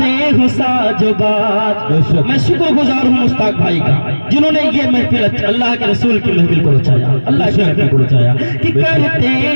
हो साजोबात। मैं शुक्रगुजार हूँ मुश्ताक भाई का जिन्होंने ये महफिल अल्लाह के रसूल की महफिल को रचाया, अल्लाह की महफिल को रचाया कि करते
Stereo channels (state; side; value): inverted; both; correlation -1.00